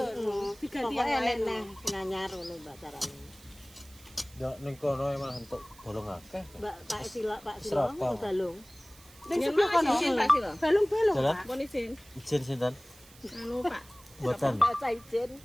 diganti Pokoknya yang lain. neh nganyar ngono Mbak carane. Ya ning kono malah entuk bolong akeh. Mbak Pak Sila Serapang. mau balung. ning Yen sebelah kono. izin Pak Silo. Balung-balung, Jalan. Pak. Pun izin. Izin sinten? Anu, Pak. Mboten. Pak Saidin.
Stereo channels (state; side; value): noise; right; hiss, 23 dB below the sound